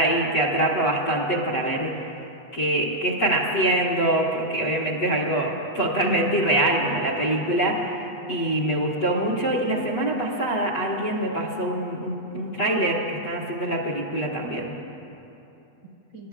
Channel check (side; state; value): right; late; 8.1 ms